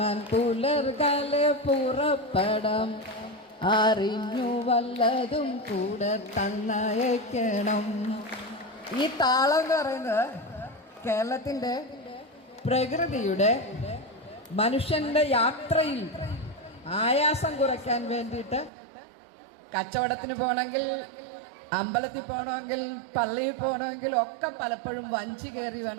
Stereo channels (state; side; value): drops out; left; at 18.7 s